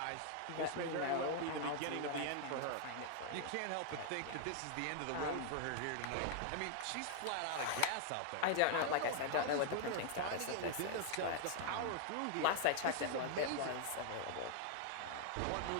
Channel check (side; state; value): both; different; correlation 0.00